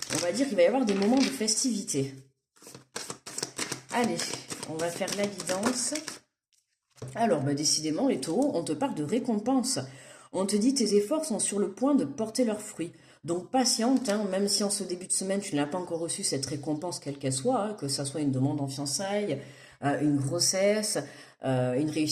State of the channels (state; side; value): identical; both; correlation 1.00